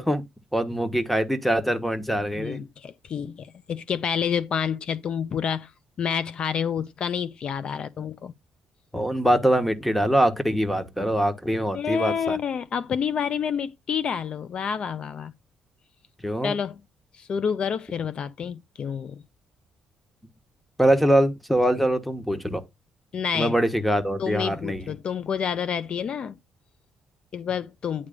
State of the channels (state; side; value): normal; both; correlation 0.84